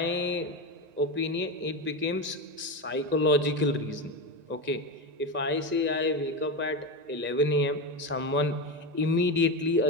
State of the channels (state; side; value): late; left; 1.9 ms